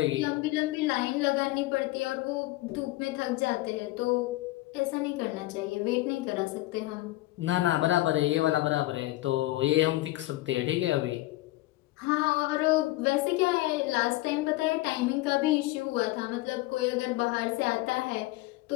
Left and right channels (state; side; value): quieter; right; 18.4 dB